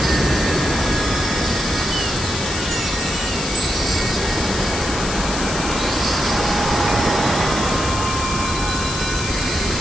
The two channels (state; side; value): noise; left; hiss, 6 dB below the sound